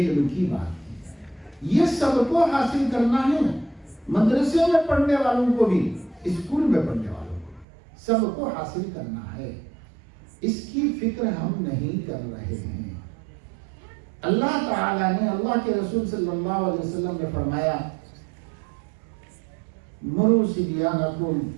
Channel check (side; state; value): left; drops out; at 7.7 s